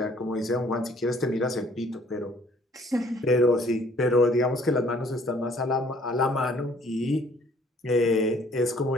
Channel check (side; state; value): both; normal; correlation 0.59